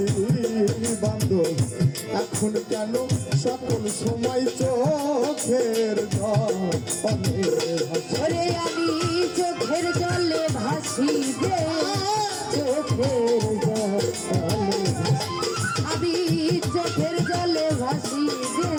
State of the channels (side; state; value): both; identical; correlation 1.00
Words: বান্ধব এখন কেন সকল সময় চোখের ওরে আমি চোখের জলে ভাসি রে চোখের জলে আমি চোখের জলে ভাসি রে